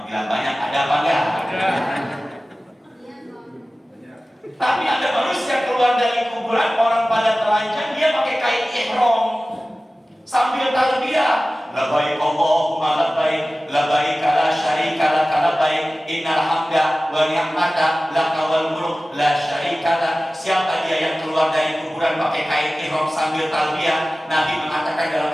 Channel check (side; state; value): both; normal; correlation 0.97